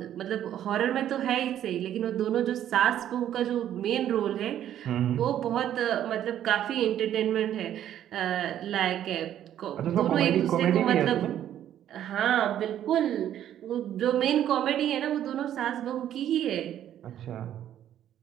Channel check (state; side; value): quieter; left; 11.1 dB